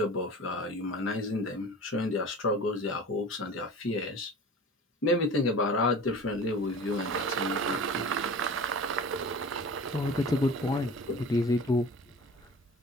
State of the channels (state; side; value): normal; both; correlation 0.39